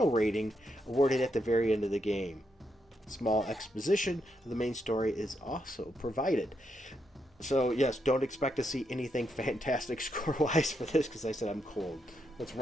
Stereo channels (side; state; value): both; normal; correlation 0.80